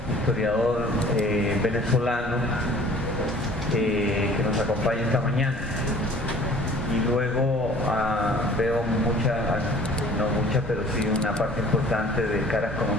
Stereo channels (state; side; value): normal; both; correlation 0.50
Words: historiador venezolano que nos acompaña esta mañana. Y luego veo pero sí una parte importante de caras